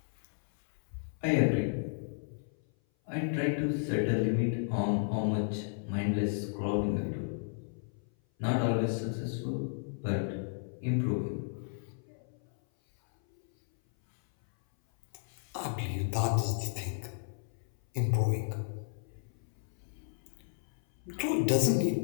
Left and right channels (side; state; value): right; silent; 56 dB below the other